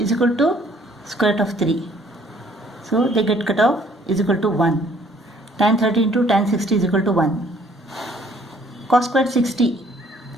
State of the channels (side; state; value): both; normal; correlation 0.61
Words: equal to square root of 3. So they get cut off, is equal to 1. Tan 30 into tan 60 is equal to 1. Cos squared 60.